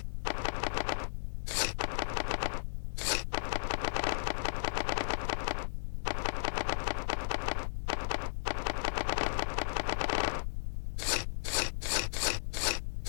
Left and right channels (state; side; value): silent; right; digital silence